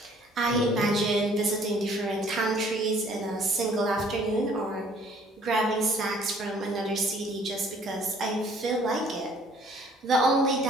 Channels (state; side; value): normal; both; correlation 0.58